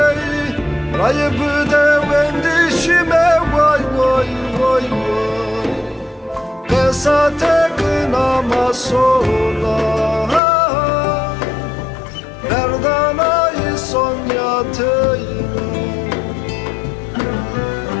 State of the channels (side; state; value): right; drops out; at 10.4 s